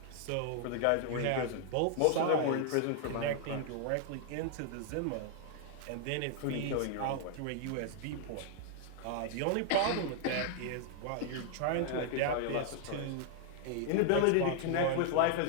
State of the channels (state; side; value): different; both; correlation 0.00